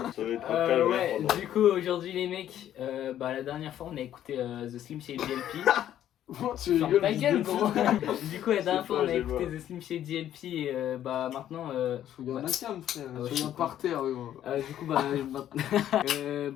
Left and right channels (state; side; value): quieter; right; 11.3 dB